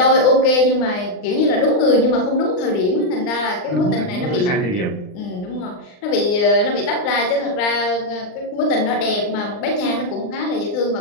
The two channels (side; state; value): right; late; 39 ms